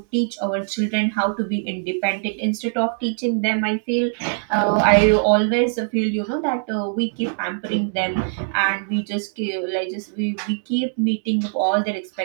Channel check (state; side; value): silent; left; digital silence